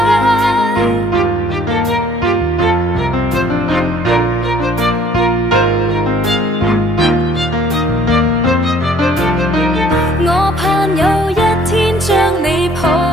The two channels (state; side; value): normal; both; correlation 0.57